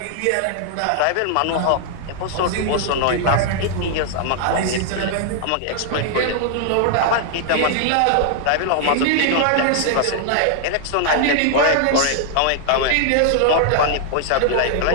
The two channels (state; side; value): different; both; correlation -0.01